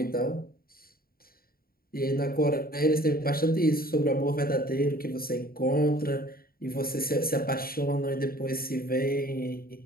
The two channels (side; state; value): right; late; 0.43 ms